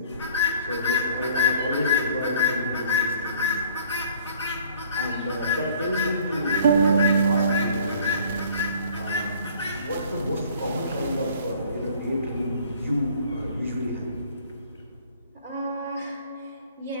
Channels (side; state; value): both; inverted; correlation -0.54